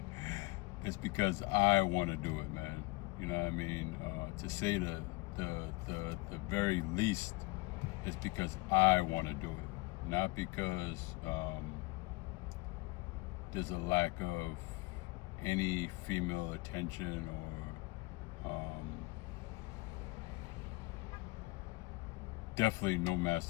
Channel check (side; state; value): right; quieter; 23.1 dB